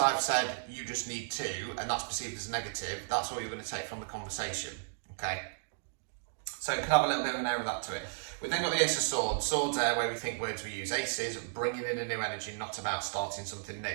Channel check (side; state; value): left; silent; digital silence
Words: said you just need to, and that's perceived as negative, that's all you're going to take from the conversation. Okay, so it could have a little bit of an air of that to it. We've then got the Ace of Swords. Swords are where we think words we use. Aces, bringing in a new energy, not about starting something new.